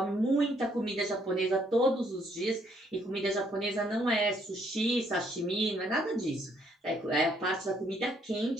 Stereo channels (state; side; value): normal; both; correlation 0.69